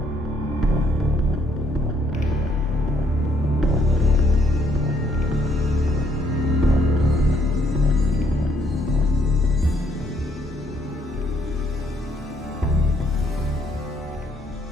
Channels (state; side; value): normal; both; correlation 0.69